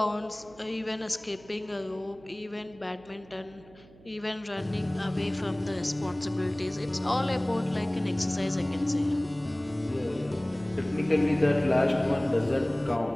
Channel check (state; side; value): noise; right; hum, 23 dB below the sound